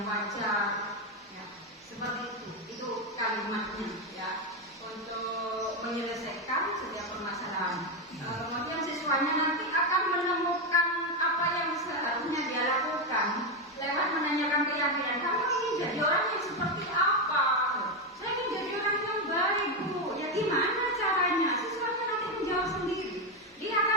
wajar. Ya, seperti itu kalimatnya ya. Untuk menyelesaikan setiap permasalahan. Kemudian siswanya nanti akan menemukan apa yang seharusnya dia lakukan lewat menanyakan keyakinan. Kamu ingin jadi orang yang seperti apa? Saya ingin jadi orang yang baik, Bu. Ya gimana caranya? Siswanya nanti menjawab sendiri. Dia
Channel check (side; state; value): both; normal; correlation 0.08